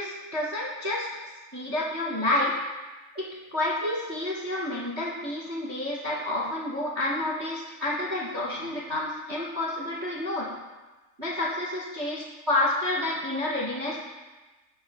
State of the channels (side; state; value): left; late; 3.4 ms